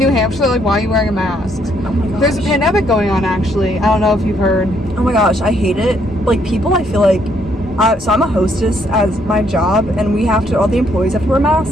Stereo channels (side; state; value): both; normal; correlation 0.70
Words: Hampshire, like, why are you wearing a mask? Oh my gosh. There's a pandemic going on, actually. I don't know if you've heard. Oh my gosh, I hate it. Like, people, I feel like... so I'm a hostess as my job, and we have to... All the employees have to wear